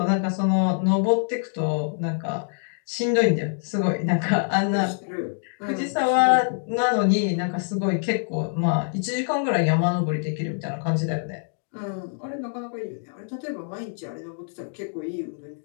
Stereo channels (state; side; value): silent; right; digital silence